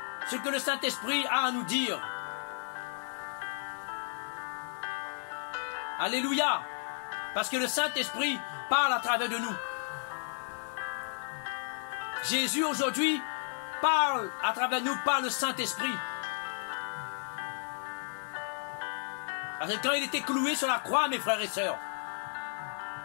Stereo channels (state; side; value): silent; right; digital silence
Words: ce que le Saint-Esprit a à nous dire. Alléluia. Parce que le Saint-Esprit parle à travers de nous. Jésus aujourd'hui parle à travers nous par le Saint-Esprit. Parce que quand il était cloué sur la croix, mes frères et sœurs,